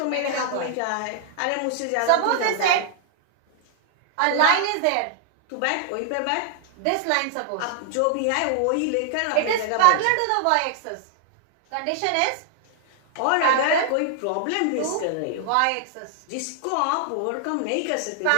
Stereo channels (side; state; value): both; different; correlation -0.01